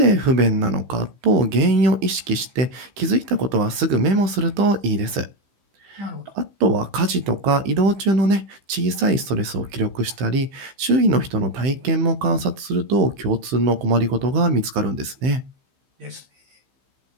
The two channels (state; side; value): late; left; 15 ms